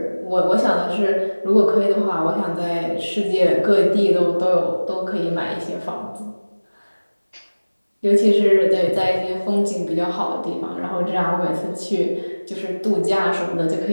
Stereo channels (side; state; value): both; inverted; correlation -1.00